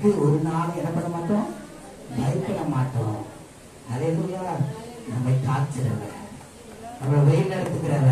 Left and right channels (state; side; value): identical; both; correlation 1.00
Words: ஒரு நாள் என்ன பண்ண மாட்டோம்? பயப்பட மாட்டோம். அல்லேலூயா. நம்மை காக்கிறவர், நம்மளை வழி